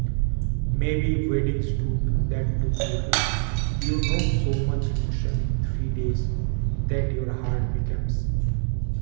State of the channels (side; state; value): left; silent; digital silence